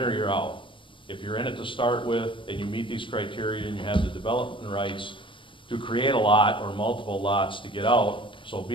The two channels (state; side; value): late; right; 0.25 ms